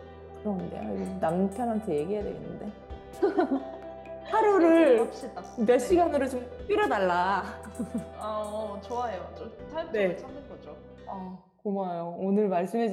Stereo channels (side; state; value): both; identical; correlation 1.00